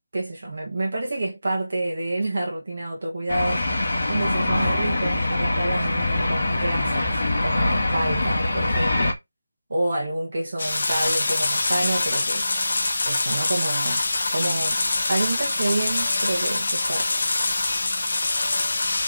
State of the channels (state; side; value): inverted; both; correlation -0.93